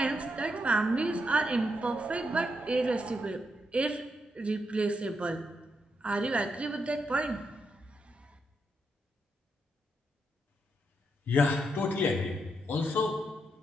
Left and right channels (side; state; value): both; normal; correlation 0.81